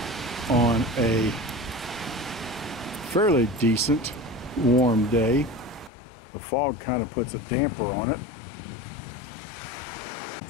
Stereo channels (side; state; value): right; drops out; at 5.9 s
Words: on a fairly decent warm day. The fog kind of puts a damper on it.